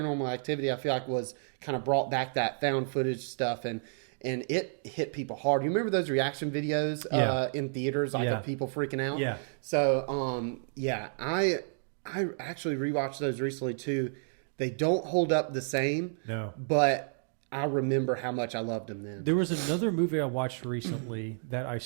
Activity, I feel like was kind of brought back that found footage stuff, and it hit people hard. You remember those reaction videos in theaters, of people freaking out? Yeah. So, I actually rewatched those recently too. They don't hold up the same. No. But I remember how much I loved them then. There was another movie I watched recently that I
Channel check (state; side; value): silent; left; digital silence